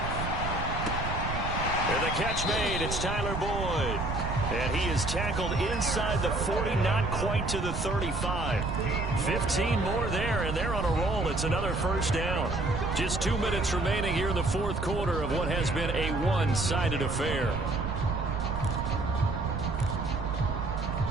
And the catch made. It's Tyler Boyd. And he is tackled inside the 40, not quite to the 35. 15 more there, and they're on a roll. It's another first down. Just 2 minutes remaining here in the fourth quarter of what has been a one-sided affair.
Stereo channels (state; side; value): noise; right; rumble, 4 dB below the sound